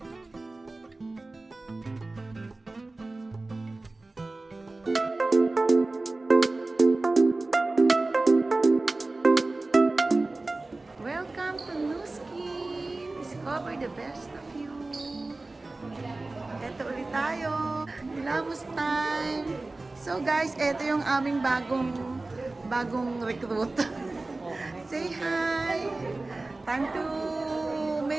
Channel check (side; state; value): left; quieter; 3.2 dB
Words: to Nuskin! Discover the best of you! Eto ulit tayo! Hilamos time! So guys, eto yung aming bagong recruit. Say hi! Time to